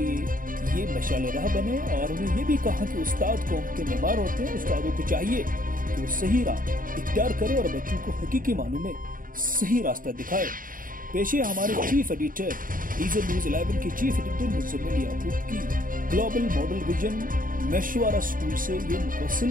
ये मशाल राह बने। और उन्होंने ये भी कहा कि उस्ताद कौम के मेहमान होते हैं, उस्तादों को चाहिए कि वो सही राह इख्तियार करे और बच्चों को हकीकी मानों में सही रास्ता दिखाए। पेश है हमारे चीफ एडिटर इज़ेड न्यूज़ 11 के चीफ एडिटर मुज़म्मिल याकूब की ग्लोबल मॉडल विजन मशवरा स्कूल से ये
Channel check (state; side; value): late; left; 0.40 ms